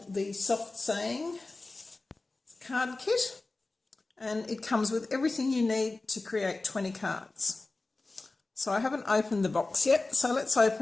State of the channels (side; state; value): right; quieter; 3.3 dB